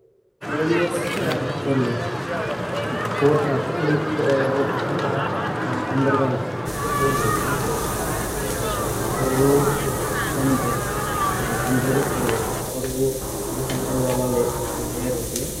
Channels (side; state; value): both; identical; correlation 1.00